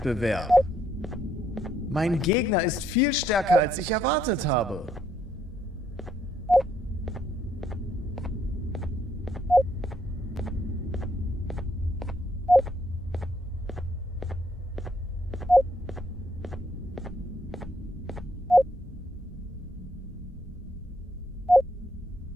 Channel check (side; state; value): both; normal; correlation 0.72